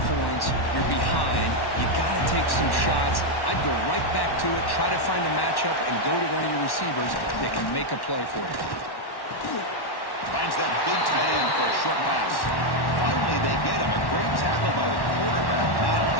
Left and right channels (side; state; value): right; late; 1.1 ms